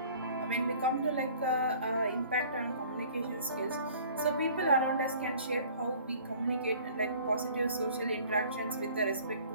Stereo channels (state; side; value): inverted; both; correlation -0.50